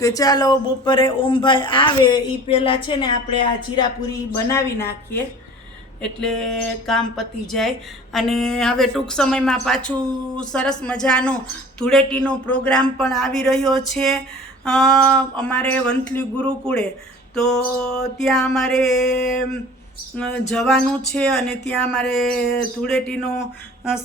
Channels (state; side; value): normal; both; correlation 0.44